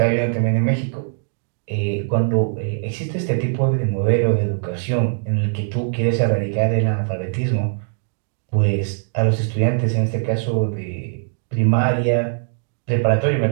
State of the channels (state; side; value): silent; left; digital silence